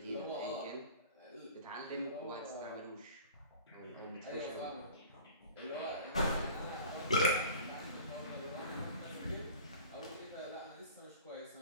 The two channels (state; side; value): inverted; both; correlation -0.42